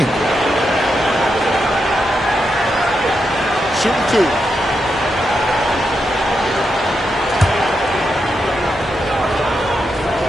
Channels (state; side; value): normal; both; correlation 0.84